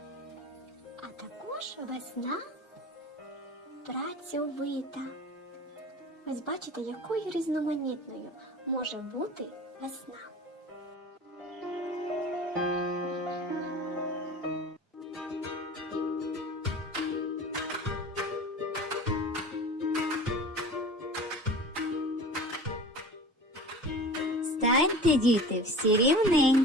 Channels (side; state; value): both; normal; correlation 0.37